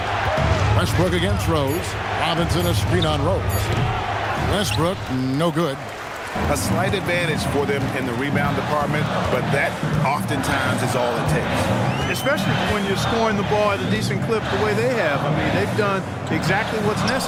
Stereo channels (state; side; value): identical; both; correlation 1.00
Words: Westbrook against Rose. Robinson a screen on Rose. Westbrook, no good. A slight advantage for them in the rebound department, but that oftentimes is all it takes. Especially when you're scoring the ball at a decent clip the way they have. I mean, they've done exactly what's